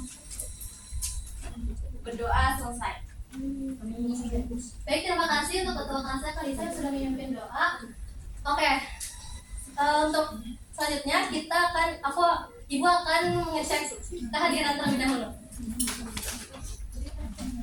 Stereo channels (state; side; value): identical; both; correlation 1.00